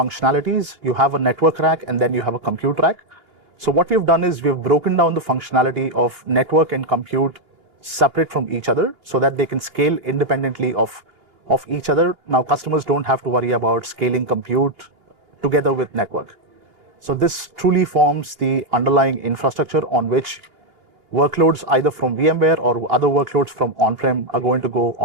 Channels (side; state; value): left; late; 2.8 ms